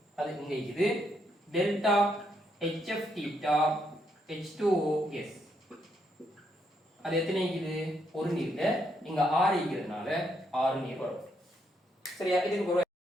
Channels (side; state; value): both; normal; correlation 0.76